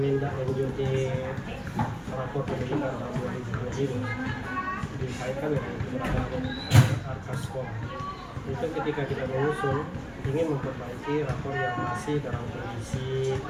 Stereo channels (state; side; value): identical; both; correlation 1.00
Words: rapor pendidikan tahun 2020 ini dikaitkan dengan keberadaan ARKAS sekolah. Itu ketika kita menyusun ingin memperbaiki rapor yang masih dalam kondisi